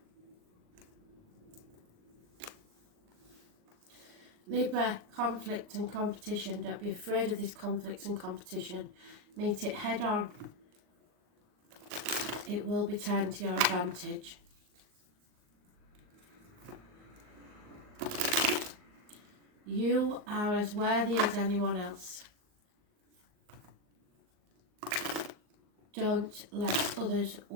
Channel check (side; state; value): left; late; 39 ms